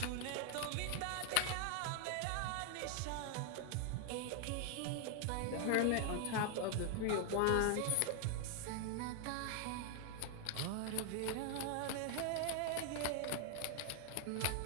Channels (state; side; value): different; both; correlation 0.00